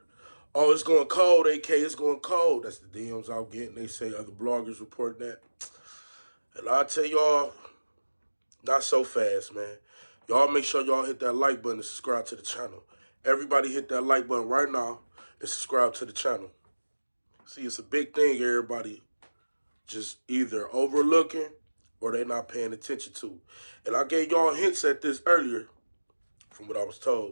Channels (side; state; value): both; inverted; correlation -1.00